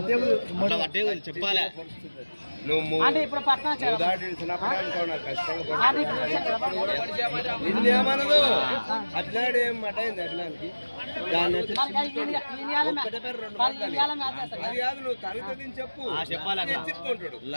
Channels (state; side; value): inverted; both; correlation -1.00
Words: చెప్పాలి. అంటే ఇప్పుడు పట్టణం